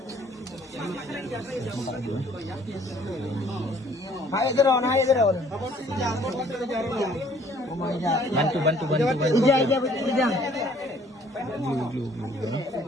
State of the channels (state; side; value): normal; both; correlation 0.59